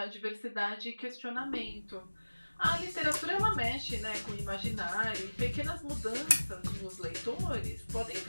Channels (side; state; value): both; inverted; correlation -1.00